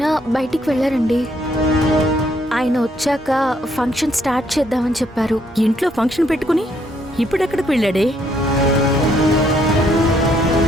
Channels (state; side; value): normal; both; correlation 0.70